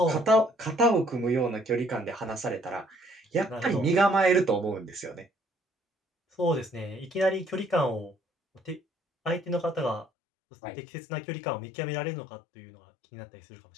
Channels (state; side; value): drops out; right; at 10.1 s